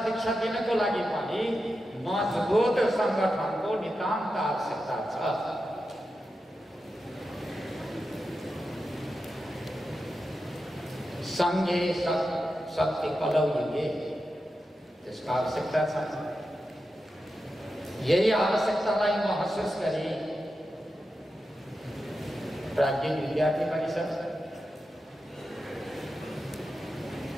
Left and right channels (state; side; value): normal; both; correlation 0.90